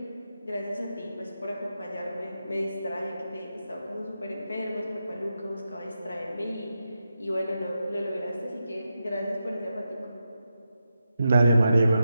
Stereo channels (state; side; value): inverted; both; correlation -0.87